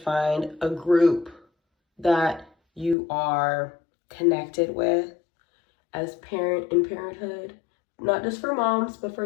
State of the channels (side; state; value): right; drops out; at 3.0 s